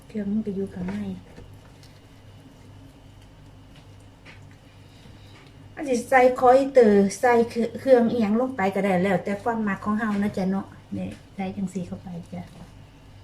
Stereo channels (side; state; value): both; identical; correlation 1.00